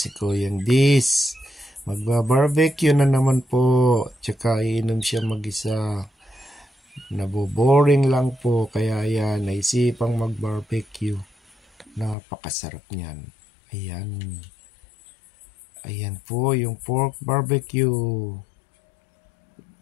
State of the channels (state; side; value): drops out; right; at 12.2 s